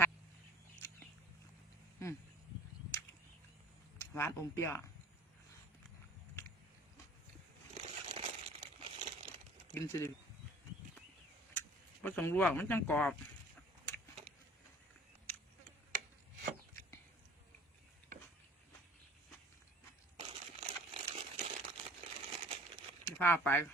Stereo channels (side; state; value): both; normal; correlation 0.48